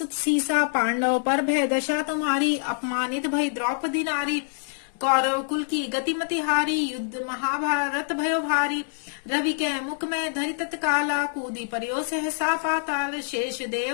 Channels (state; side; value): silent; right; digital silence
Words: सीसा। पांडव पर भय दशा तुम्हारी, अपमानित भई द्रौपदी नारी। कौरव कुल की गतिमति हारी, युद्ध महाभारत भयो भारी। रवि के मुख में धरि तत्काला, कूदी परियो सहसा पाताल। शेष